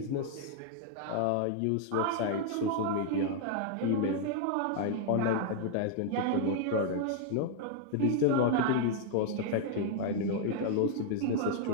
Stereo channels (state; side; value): different; both; correlation 0.00